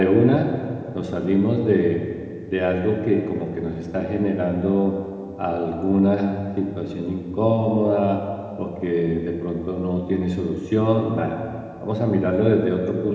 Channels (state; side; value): identical; both; correlation 1.00